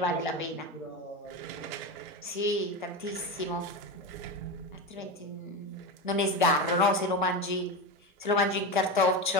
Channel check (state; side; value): normal; both; correlation 0.19